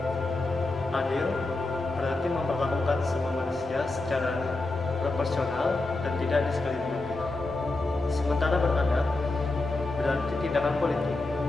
Adil berarti memperlakukan semua manusia secara proporsional dan tidak diskriminatif. Sementara beradab berarti tindakan politik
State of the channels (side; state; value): right; quieter; 3.1 dB